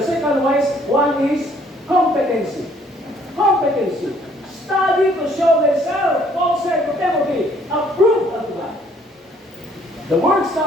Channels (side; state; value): both; normal; correlation 0.62